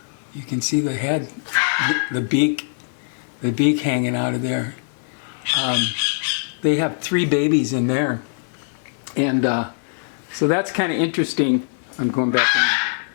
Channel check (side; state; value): right; silent; digital silence